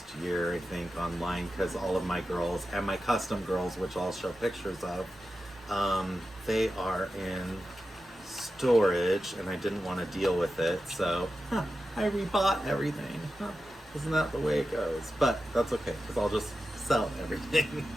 year, I think, online, because all of my girls and my custom girls, which I'll show pictures of, they are in storage, and I didn't want to deal with it, so I rebought everything. Isn't that the way it goes? But that's okay, because I'll just sell everything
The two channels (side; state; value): both; normal; correlation 0.92